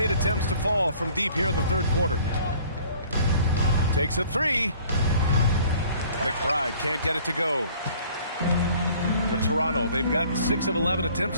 attempts to fall from deep here in the third quarter. Takes a three. McBride can't get it to go. For Toronto, they've gotten 6 of 11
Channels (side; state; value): both; inverted; correlation -0.54